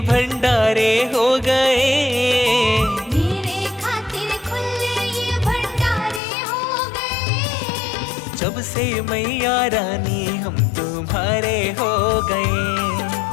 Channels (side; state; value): right; drops out; at 6.2 s